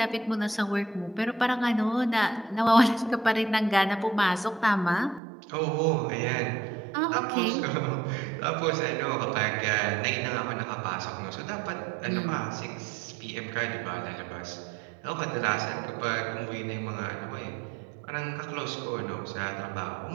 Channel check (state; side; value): drops out; left; at 5.2 s